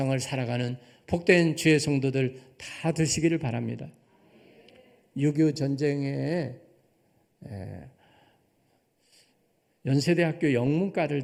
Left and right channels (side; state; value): both; identical; correlation 1.00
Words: 살아가는 복된 주의 성도들 다 되시기를 바랍니다. 6.25 전쟁에 연세대학교 영문과를